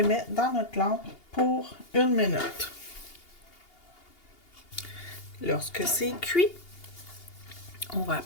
met dans notre lampe pour 1 minute. Lorsque c'est cuit, on va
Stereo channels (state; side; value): late; right; 2.8 ms